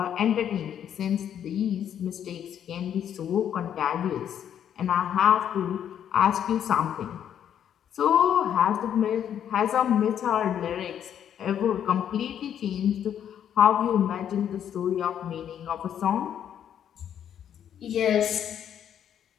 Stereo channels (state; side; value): quieter; right; 9.5 dB